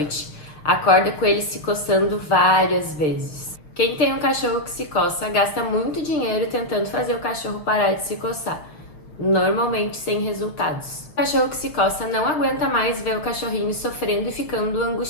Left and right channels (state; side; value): late; right; 6.5 ms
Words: Acorda com ele se coçando várias vezes. Quem tem um cachorro que se coça gasta muito dinheiro tentando fazer o cachorro parar de se coçar, normalmente sem resultados. O cachorro que se coça não aguenta mais ver o cachorrinho sofrendo e ficando